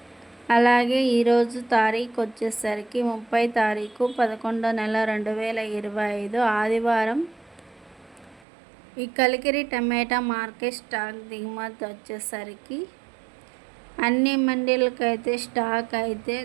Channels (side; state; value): left; drops out; at 8.5 s